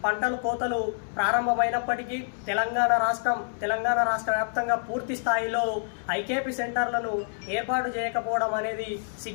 పంటలు కోతలు ప్రారంభమైనప్పటికీ తెలంగాణ రాష్ట్ర వ్యాప్తంగా పూర్తి స్థాయిలో ఐకేపీ సెంటర్లను ఏర్పాటు చేయకపోవడం అనేది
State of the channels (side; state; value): right; silent; digital silence